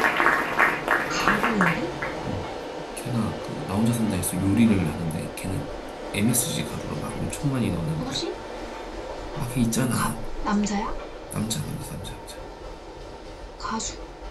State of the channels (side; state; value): both; identical; correlation 1.00